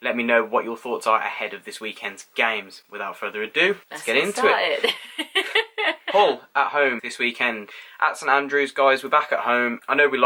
Let me know what your thoughts are ahead of this weekend's games. Without further ado, let's get into it. Hull at home this weekend at St Andrews. Guys, we're back at home. I know we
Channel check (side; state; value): both; identical; correlation 1.00